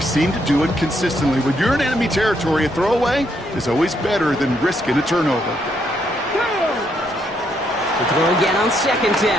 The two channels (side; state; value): both; normal; correlation 0.75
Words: seem to do it consistently. When you're in enemy territory, a throwaway is always better than risking a turnover. The throw again on 2nd